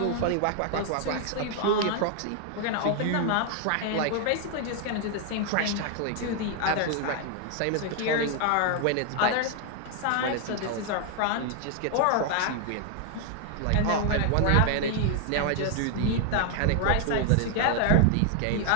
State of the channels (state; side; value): different; both; correlation 0.00